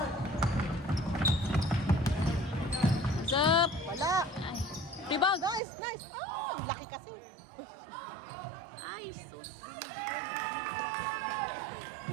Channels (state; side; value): drops out; left; at 5.6 s